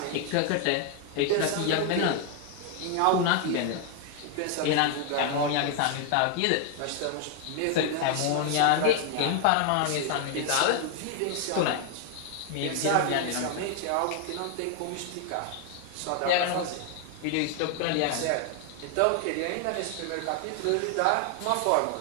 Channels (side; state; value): both; different; correlation 0.00